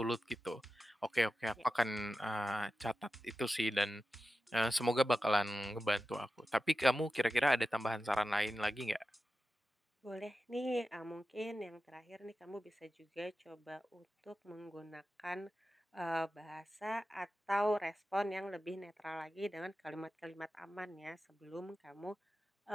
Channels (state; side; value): normal; both; correlation 0.93